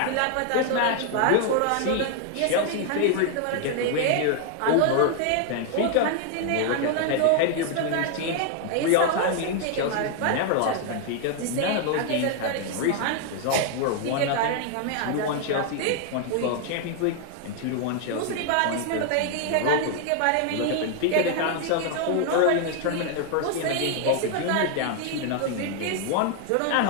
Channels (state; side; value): different; both; correlation 0.00